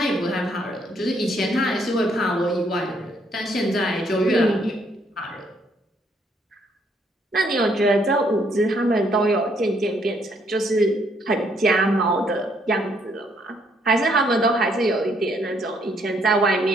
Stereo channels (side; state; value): both; normal; correlation 0.70